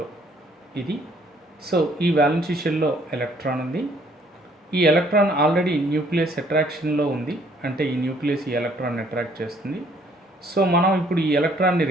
ఇది. సో ఈ వ్యాలెన్స్ షెల్లో ఎలక్ట్రాన్ ఉంది. ఈ ఎలక్ట్రాన్ ఆల్రెడీ న్యూక్లియస్ అట్రాక్షన్లో ఉంది, అంటే ఈ న్యూక్లియస్ ఈ ఎలక్ట్రాన్ అట్రాక్ట్ చేస్తుంది. సో మనం ఇప్పుడు ఈ ఎలక్ట్రాన్ని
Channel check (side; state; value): both; normal; correlation 0.63